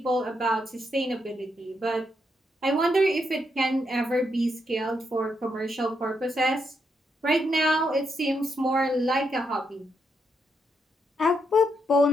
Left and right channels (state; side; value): normal; both; correlation 0.80